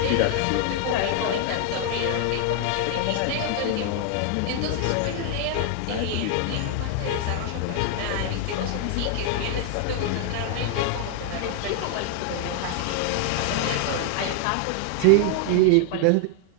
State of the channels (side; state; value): both; different; correlation 0.00